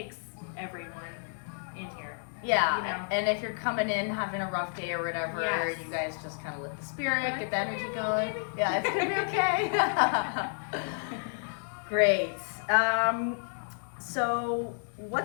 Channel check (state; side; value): silent; right; digital silence